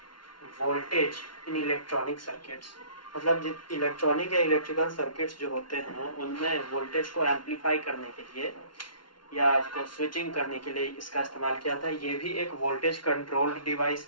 voltage in electronic circuits. मतलब इलेक्ट्रॉनिक या इलेक्ट्रिकल सर्किट्स जो होते हैं उनमें वोल्टेज को एम्पलीफाई करने के लिए या उसको स्विचिंग करने के लिए इसका इस्तेमाल किया था। ये भी एक वोल्टेज कंट्रोल्ड डिवाइस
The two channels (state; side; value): late; right; 0.72 ms